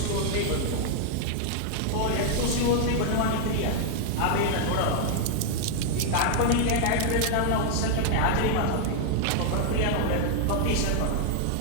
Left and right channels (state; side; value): different; both; correlation 0.00